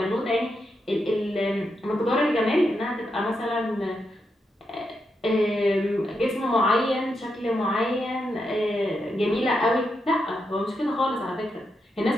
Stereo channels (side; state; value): both; normal; correlation 0.84